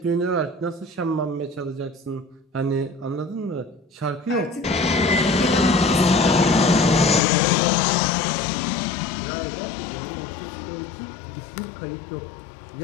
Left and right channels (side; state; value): right; drops out; at 7.2 s